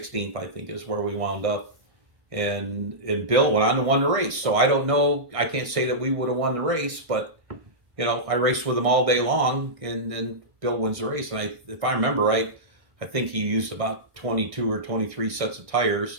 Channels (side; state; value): left; late; 1.6 ms